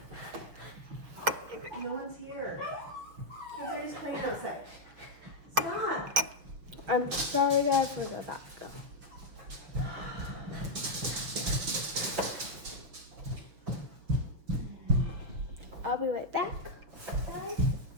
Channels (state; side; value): late; left; 6.3 ms